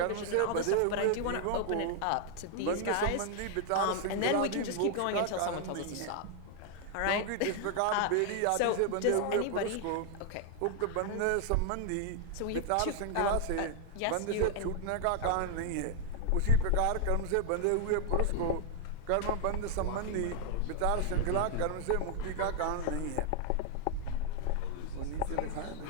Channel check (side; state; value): both; different; correlation 0.00